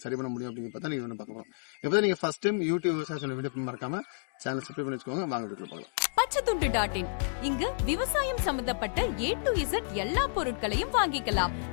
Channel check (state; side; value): silent; right; digital silence